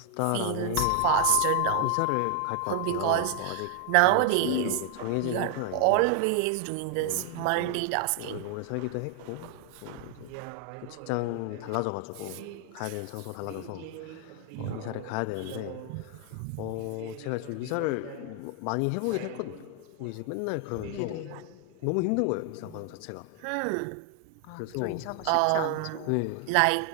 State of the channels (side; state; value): both; different; correlation 0.00